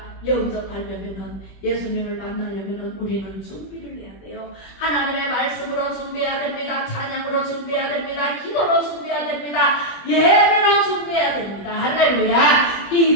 영접하려면 예수님을 만나려면 우리는 준비를 해야 돼요. 하나님의 말씀으로 준비해야 됩니다. 찬양으로 준비해야 됩니다. 기도로 준비해야 됩니다. 예배로 준비해야 됩니다. 할렐루야.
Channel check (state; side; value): late; right; 20 ms